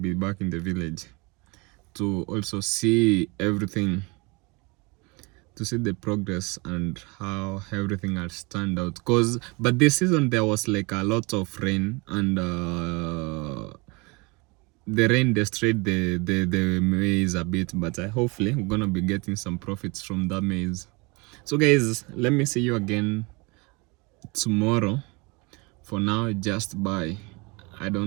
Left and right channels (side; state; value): left; quieter; 27.5 dB